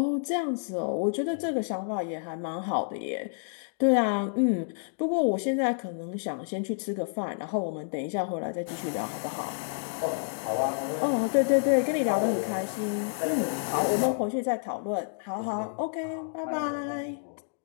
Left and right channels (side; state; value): right; silent; digital silence